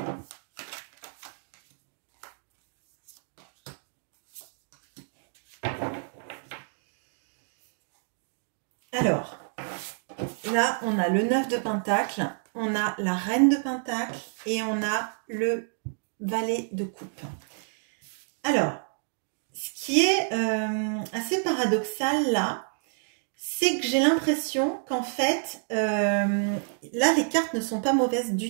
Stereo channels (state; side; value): silent; left; digital silence